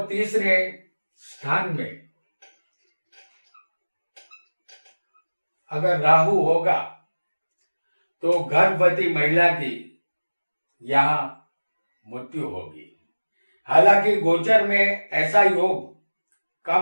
तीसरे स्थान में अगर राहु होगा तो गर्भवती महिला की यहाँ मृत्यु होगी। हालांकि गोचर में ऐसा योग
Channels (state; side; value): inverted; both; correlation -1.00